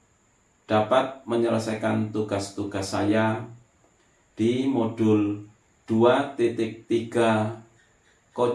dapat menyelesaikan tugas-tugas saya di modul 2.3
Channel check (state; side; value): identical; both; correlation 1.00